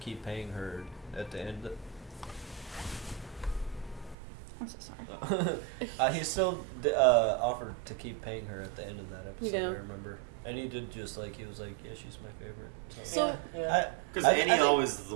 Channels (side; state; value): left; drops out; at 4.2 s